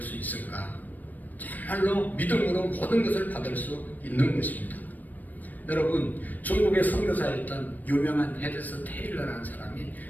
수 있을까? 정말로 믿음으로 모든 것을 받을 수 있는 것입니다. 여러분, 중국의 선교사였던 유명한 헤드스 테일러라는 사람이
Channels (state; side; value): late; right; 0.085 ms